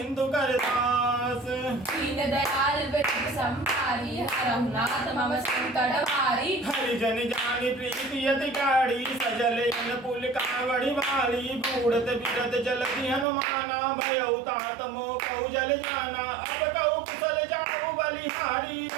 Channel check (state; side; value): drops out; left; at 13.2 s